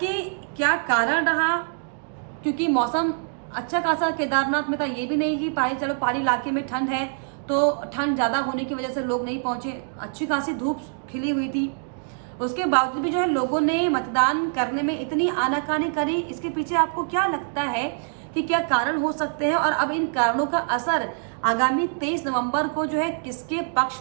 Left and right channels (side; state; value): left; silent; digital silence